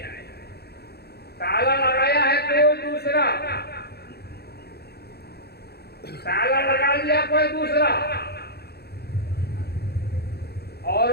ताला लगाया है कोई दूसरा, ताला लगा लिया कोई दूसरा,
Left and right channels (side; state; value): right; late; 0.47 ms